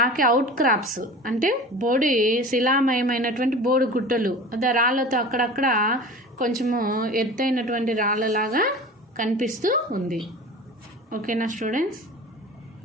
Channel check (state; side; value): normal; both; correlation 0.36